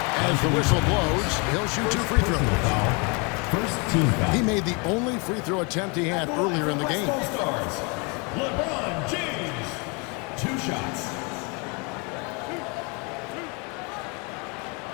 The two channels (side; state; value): right; quieter; 31.7 dB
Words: as the whistle blows. He'll shoot 2 free throws. First team foul. He made the only free throw attempt he had earlier in the game. Stars. LeBron James. 2 shots.